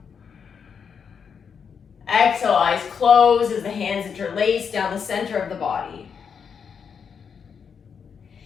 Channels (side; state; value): right; quieter; 6.7 dB